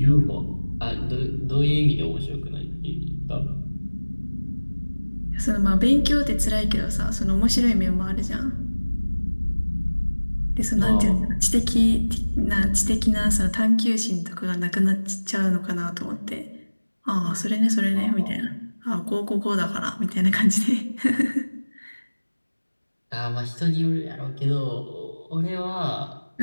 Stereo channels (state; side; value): inverted; both; correlation -1.00